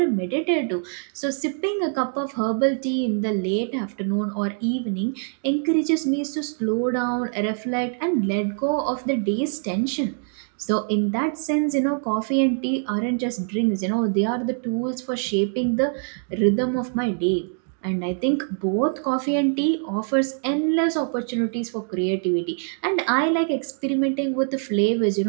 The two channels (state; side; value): silent; left; 57 dB below the other